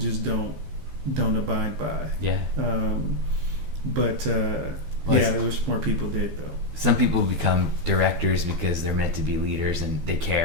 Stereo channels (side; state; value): left; late; 14 ms